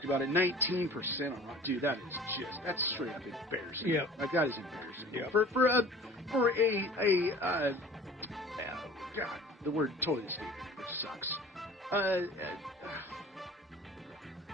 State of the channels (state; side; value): normal; both; correlation 0.45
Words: about it. 19% on Rotten. Dude, that's straight up embarrassing. Yeah. Like that is embarrassing. Yeah. God, the word totally escaped me, which sucks.